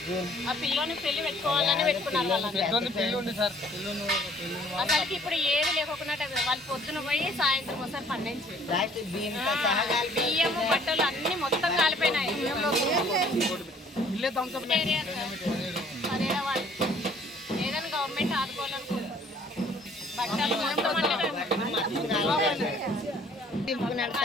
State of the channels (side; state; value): both; normal; correlation 0.57